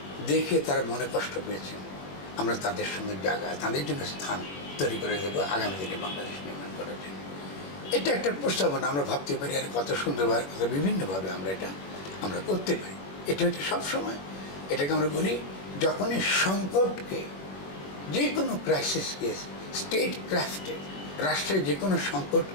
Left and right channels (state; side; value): late; right; 21 ms